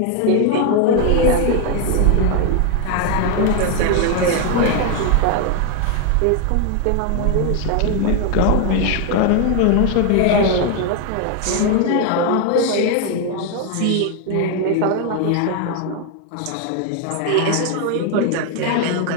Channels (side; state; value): both; different; correlation 0.01